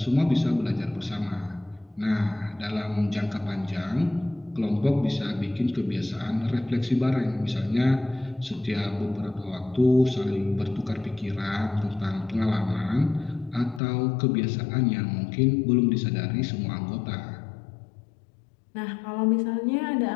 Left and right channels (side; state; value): right; drops out; at 13.8 s